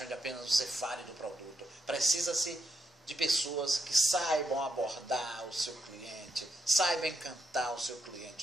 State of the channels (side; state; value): both; normal; correlation 0.82